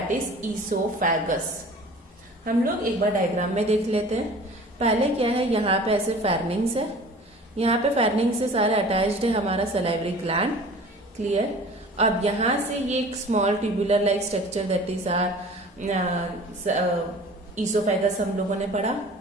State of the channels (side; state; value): both; normal; correlation 0.44